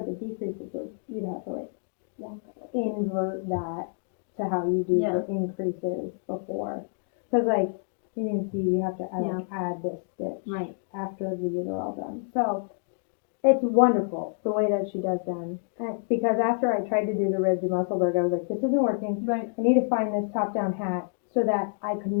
the decreases you'd have to, like, invert that to how you do the increases before. Because, like, you can see you have to add this stitch after these are all done. So it's wonderful the way that she does them. Because after I tried to do the ribbed Musselburgh, I was like, this isn't working. Right. I need to find this top-down hat so that I could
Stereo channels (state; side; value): silent; right; 59 dB below the other